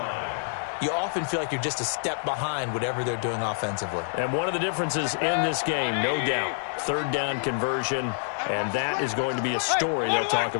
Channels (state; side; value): silent; right; digital silence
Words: you often feel like you're just a step behind whatever they're doing offensively. And one of the differences in this game, no doubt, 3rd down conversion, and that is going to be a story they'll talk